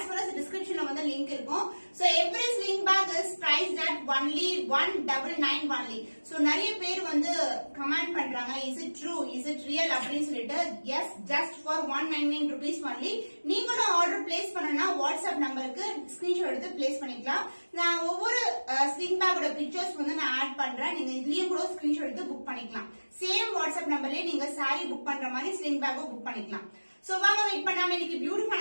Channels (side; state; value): both; inverted; correlation -1.00